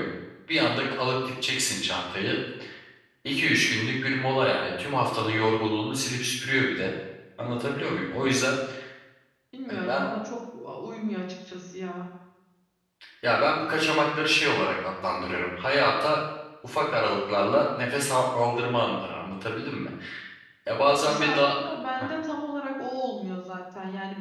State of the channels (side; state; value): both; identical; correlation 1.00